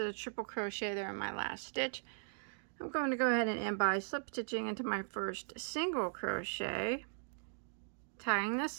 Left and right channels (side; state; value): left; silent; digital silence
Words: a triple crochet there in my last stitch. I'm going to go ahead and end by slip stitching into my first single crochet, tying